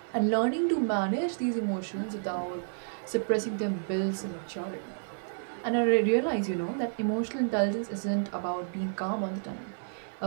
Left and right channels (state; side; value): silent; left; 58 dB below the other